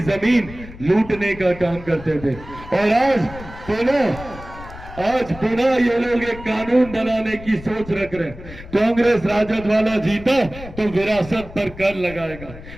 जमीन लूटने का काम करते थे। और आज पुनः ये लोग एक कानून बनाने की सोच रख रहे हैं। कांग्रेस राजद वाला जीता तो विरासत पर कर लगाएगा।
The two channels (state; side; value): noise; left; rumble, 15 dB below the sound